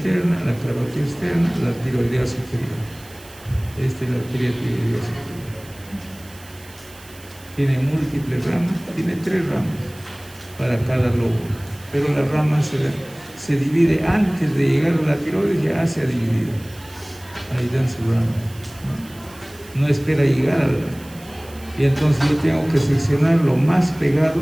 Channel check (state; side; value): noise; right; hiss, 22 dB below the sound